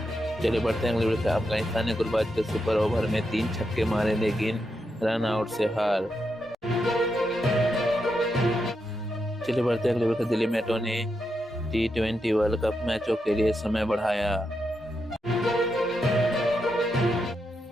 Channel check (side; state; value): both; normal; correlation 0.84